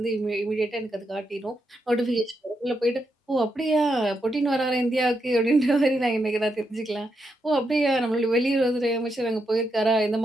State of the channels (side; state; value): both; normal; correlation 0.82